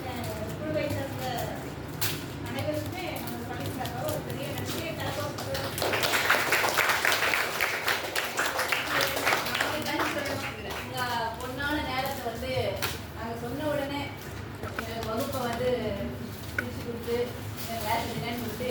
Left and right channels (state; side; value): identical; both; correlation 1.00